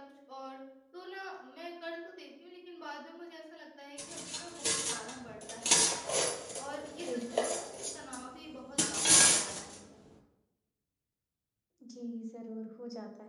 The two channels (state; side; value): identical; both; correlation 1.00